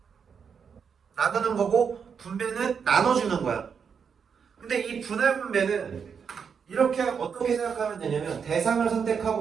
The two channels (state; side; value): quieter; left; 6.6 dB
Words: 나누는 거고 분배는 나눠주는 거야. 근데 이 분할 분배는 이렇게 어떻게 생각하면 되냐면 대상을